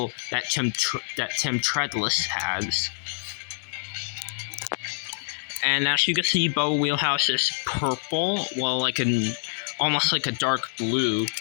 that Tim Treadless has. And as you can see, Bubba Wheelhouse is purple, well, almost like a dark blue,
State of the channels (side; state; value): right; silent; 61 dB below the other